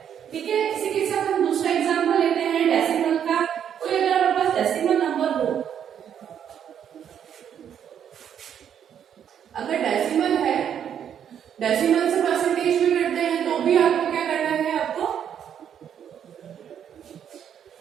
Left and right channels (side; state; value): left; quieter; 8.9 dB